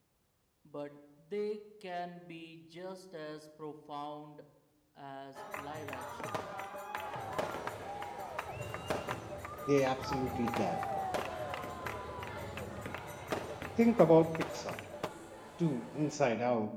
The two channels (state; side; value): identical; both; correlation 1.00